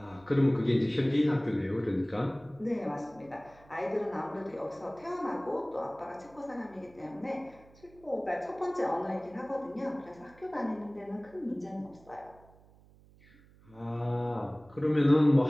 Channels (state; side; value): noise; right; hum, 26 dB below the sound